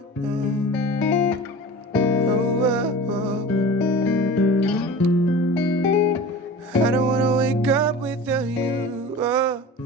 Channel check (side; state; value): both; normal; correlation 0.36